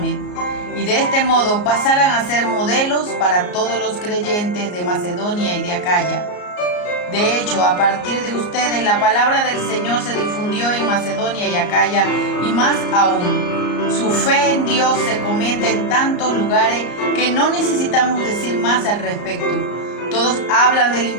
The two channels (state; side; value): late; right; 34 ms